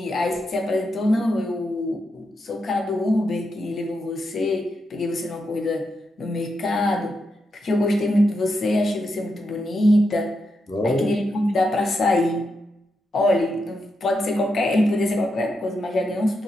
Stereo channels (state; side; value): normal; both; correlation 0.84